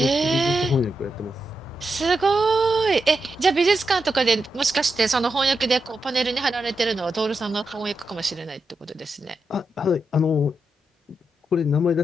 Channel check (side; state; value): both; normal; correlation 0.86